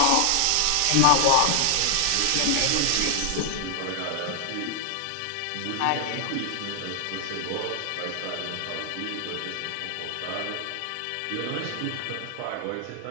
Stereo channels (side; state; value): both; different; correlation 0.00